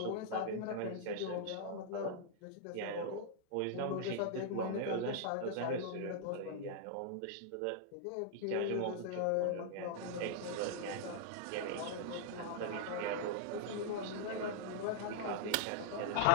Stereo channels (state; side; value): different; both; correlation -0.01